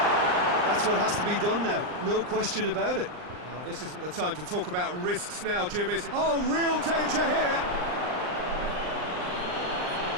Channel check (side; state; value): left; late; 39 ms